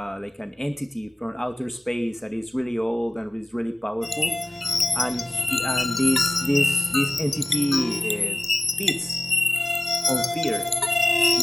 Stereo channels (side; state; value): both; normal; correlation 0.96